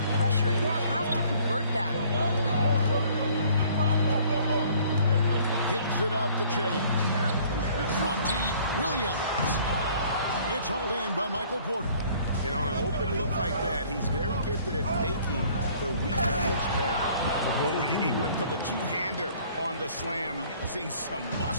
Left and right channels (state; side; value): inverted; both; correlation -0.56